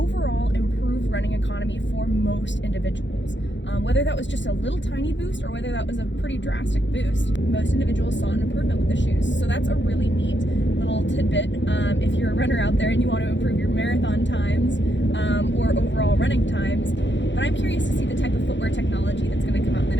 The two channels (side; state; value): right; late; 0.53 ms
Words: improved running economy for most individuals. Whether that was just a little tiny boost or whether that was a pretty drastic boost, most individuals saw an improvement with the shoes. So that's a really neat little tidbit if you're a runner out there and you want to improve your marathon times or overall running times. But I'm curious to see the type of footwear technology that's going to come out in the